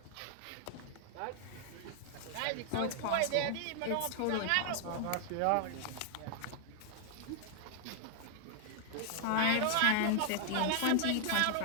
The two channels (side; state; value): both; different; correlation 0.00